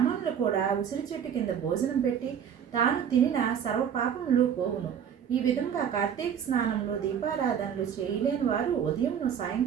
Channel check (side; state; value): left; quieter; 8.3 dB